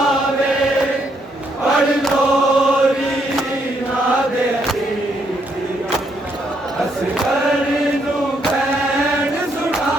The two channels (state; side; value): normal; both; correlation 0.74